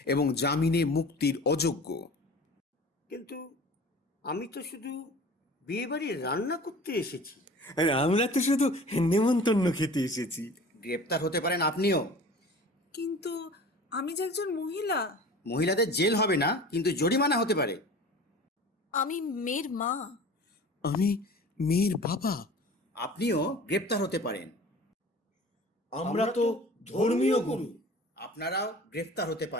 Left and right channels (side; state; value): both; normal; correlation 0.41